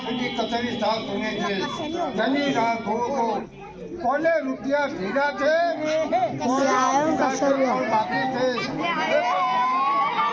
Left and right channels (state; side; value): identical; both; correlation 1.00